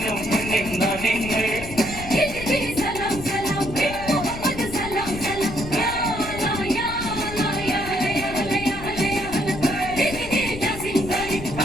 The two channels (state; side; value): noise; left; rumble, 11 dB below the sound